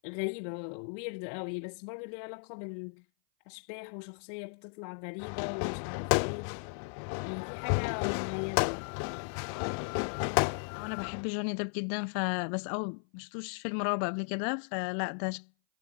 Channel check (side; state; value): right; silent; 54 dB below the other